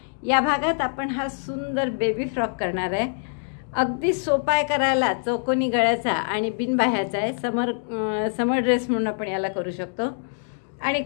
या भागात आपण हा सुंदर बेबी फ्रॉक करणार आहे। अगदी सोपा आहे करायला, चौकोनी गळ्याचा आणि बिनबाह्याचा आहे। समर ड्रेस म्हणून आपण याला करू शकतो आणि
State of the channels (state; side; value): silent; right; digital silence